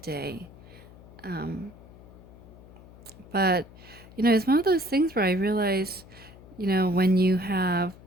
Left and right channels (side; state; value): left; noise; hum, 20 dB below the sound